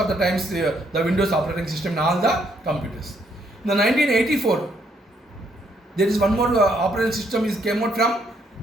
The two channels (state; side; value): normal; both; correlation 0.71